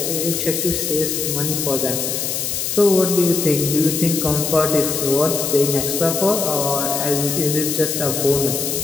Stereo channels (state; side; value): noise; left; hiss, 2 dB below the sound